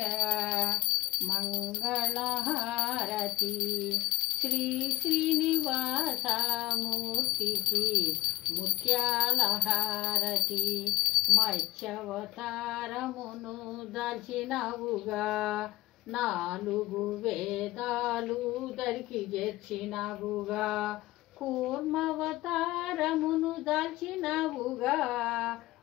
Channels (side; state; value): right; quieter; 19.0 dB